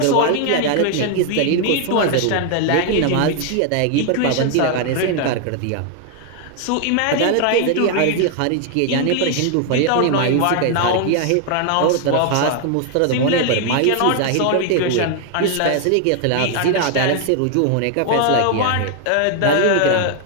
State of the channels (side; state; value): both; different; correlation 0.00